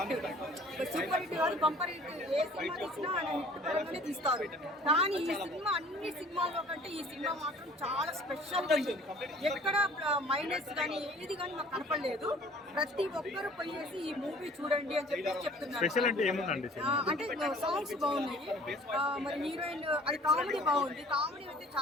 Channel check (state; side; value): normal; both; correlation 0.51